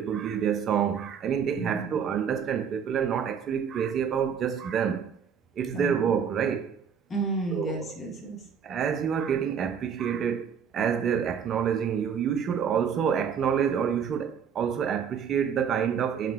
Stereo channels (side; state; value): left; quieter; 7.3 dB